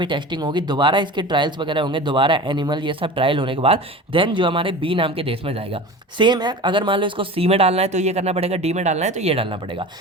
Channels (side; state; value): both; normal; correlation 0.34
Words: टेस्टिंग होगी, दोबारा इसके ट्रायल्स वगैरह होंगे, दोबारा एनिमल ये सब ट्रायल होने के बाद देन जो हमारे बी नाम के देश में जाएगा। सेम है, अगर मान लो इसको सी में डालना है तो ये करना पड़ेगा, डी में डालना है तो ये डालना पड़ेगा।